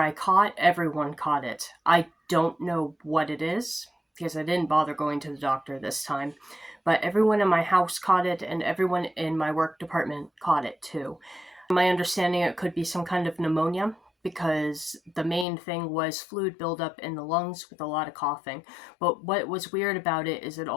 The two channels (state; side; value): drops out; right; at 15.5 s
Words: caught, everyone caught it. I don't know what it is, because I didn't bother going to the doctor this time. But everyone in my house caught it, and everyone in my work department caught it too. My understanding, it could be some kind of pneumonia, because the main thing was fluid buildup in the lungs with a lot of coughing. But what was weird about it is it